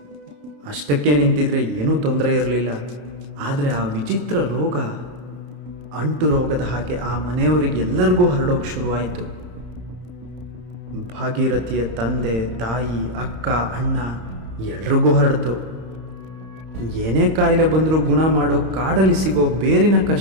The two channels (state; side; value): late; left; 32 ms